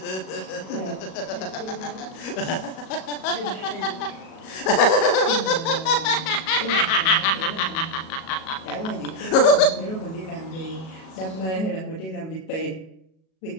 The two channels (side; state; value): right; late; 37 ms